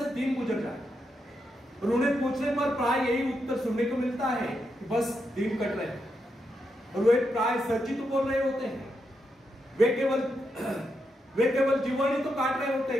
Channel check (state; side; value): normal; both; correlation 0.83